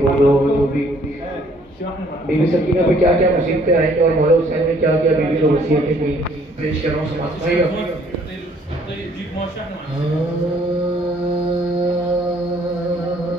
हो दो हो, जो भी। बीबी सकीना पे क्या क्या मुसीबतें आई और मौला हुसैन ने क्या क्या बीबी को वसीयतें की, पेश कर रहा हूँ। समाज भाई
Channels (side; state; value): both; normal; correlation 0.62